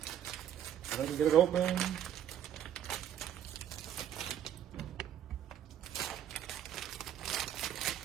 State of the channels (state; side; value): quieter; left; 10.4 dB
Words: If I can get it open.